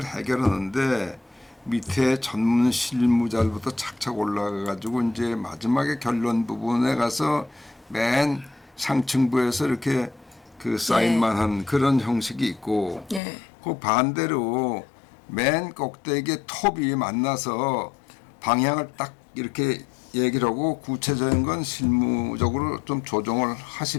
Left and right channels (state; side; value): drops out; right; at 13.2 s